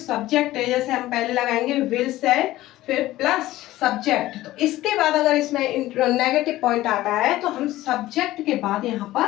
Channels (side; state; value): right; quieter; 16.1 dB